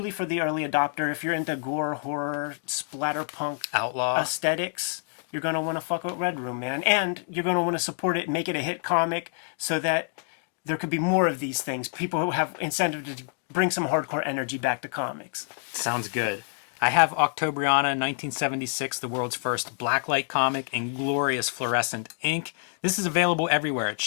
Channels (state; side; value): silent; right; 60 dB below the other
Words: for the early adopter, if you're into gore, horror, splatterpunk, outlaw aesthetics, you're going to want to fuck with Red Room, man. And you're going to want to support it and make it a hit comic so that there could be more of these things. People who have incentive to bring some hardcore energy back to comics. Sounds good. I have Octobriana 1976, the world's first blacklight comic in glorious fluorescent ink. This is available everywhere. It